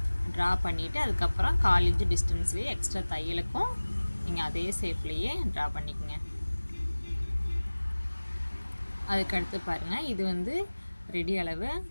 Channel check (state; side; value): inverted; both; correlation -1.00